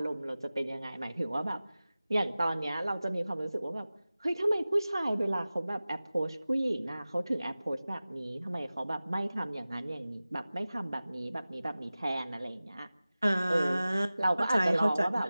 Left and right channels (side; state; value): both; inverted; correlation -0.97